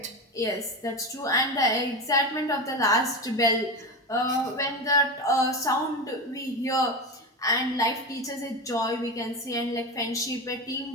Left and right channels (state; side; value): normal; both; correlation 0.21